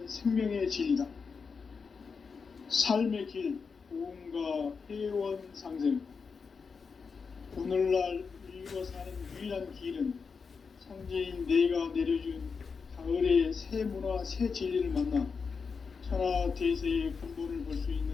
생명의 진리다. 삶의 길, 고음과 회원 상생. 오늘날 인류가 사는 유일한 길은 상제인 내가 내려준 가을의 새 문화, 새 진리를 만나 천하 대세의 근본을 볼 수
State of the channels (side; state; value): right; quieter; 5.3 dB